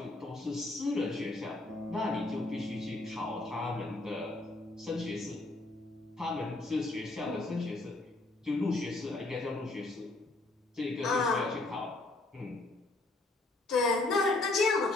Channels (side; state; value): right; quieter; 3.0 dB